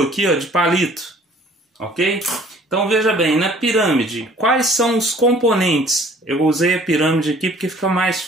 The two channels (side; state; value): both; normal; correlation 0.54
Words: aqui, ó, de palito, ok? Então veja bem, na pirâmide, quais são os componentes? Eu usei a pirâmide aqui porque fica mais